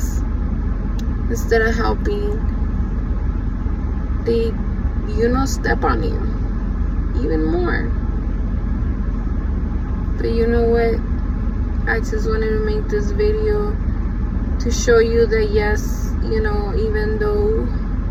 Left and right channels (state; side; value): identical; both; correlation 1.00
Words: instead of helping, they, you know, step on you even more. But you know what, I just wanted to make this video to show you that yes, you know, even though